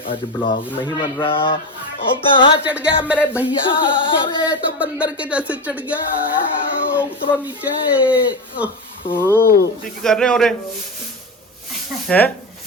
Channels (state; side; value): normal; both; correlation 0.19